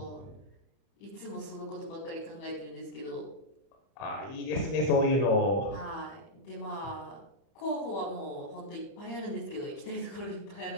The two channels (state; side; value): late; right; 31 ms